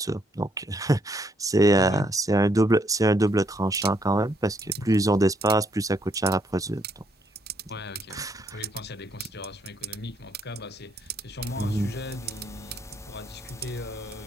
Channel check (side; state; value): both; normal; correlation 0.72